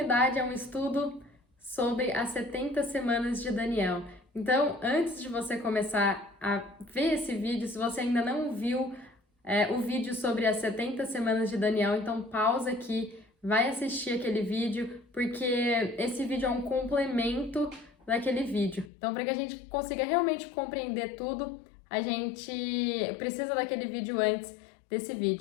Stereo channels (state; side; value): drops out; right; at 18.9 s